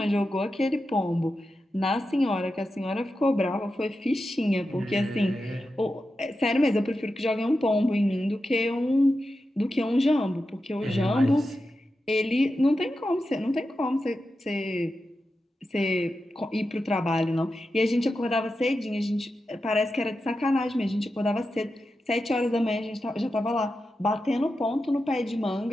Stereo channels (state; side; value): normal; both; correlation 0.90